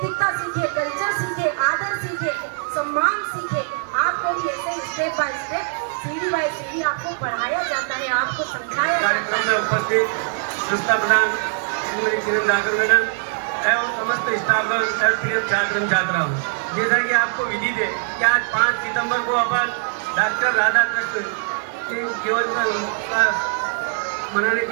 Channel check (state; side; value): silent; left; 59 dB below the other